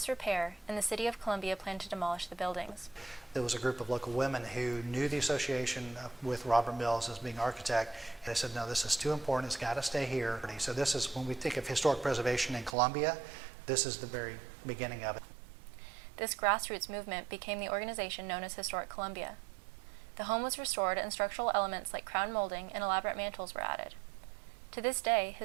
and the city of Columbia planned to demolish the buildings. There was a group of local women who knew the association with Robert Mills as being architect, and they said, no, this is too important, it's got to stay here. So this is, when we think of historic preservation in Columbia, this is the very beginning of it. This grassroots movement became the organization known as Historic Columbia. The home was restored and structural elements like crown molding and elaborate mantels were added. To this day,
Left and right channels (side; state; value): left; drops out; at 12.8 s